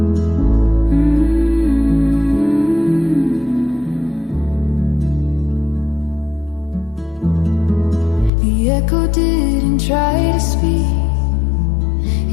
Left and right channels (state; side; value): drops out; right; at 8.3 s